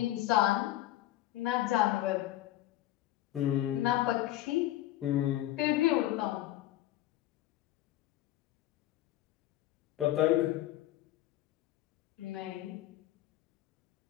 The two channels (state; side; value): quieter; right; 14.8 dB